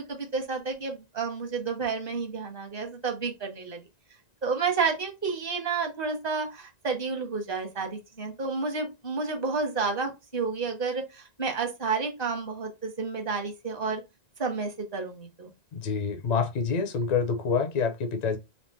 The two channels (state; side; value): late; right; 1.9 ms